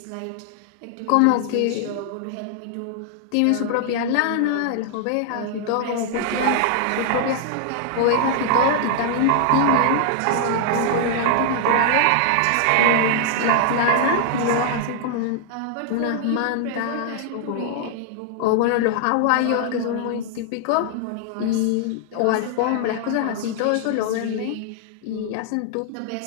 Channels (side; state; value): both; different; correlation -0.01